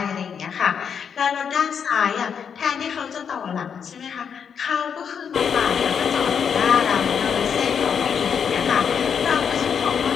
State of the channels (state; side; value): quieter; right; 7.1 dB